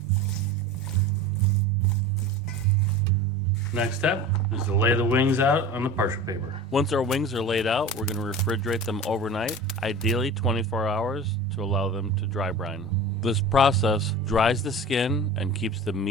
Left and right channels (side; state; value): both; normal; correlation 0.35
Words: Next step is to lay the wings out on the parchment paper. Once our wings are laid out, we're going to refrigerate them overnight, ideally 24 hours, to allow them to dry brine. This process dries the skin and keeps the